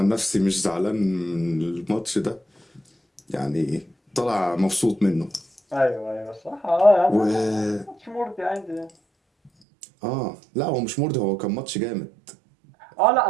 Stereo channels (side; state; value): left; drops out; at 9.5 s